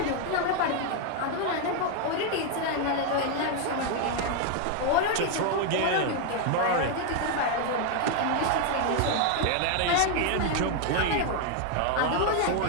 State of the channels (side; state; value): both; different; correlation 0.00